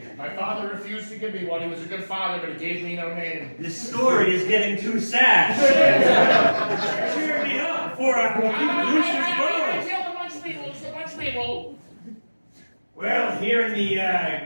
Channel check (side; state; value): both; inverted; correlation -1.00